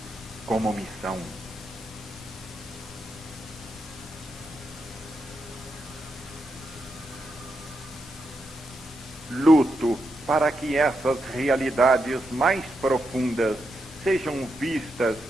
como missão. Luto para que essas realidades mais profundas sejam vistas,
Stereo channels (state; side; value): normal; both; correlation 0.84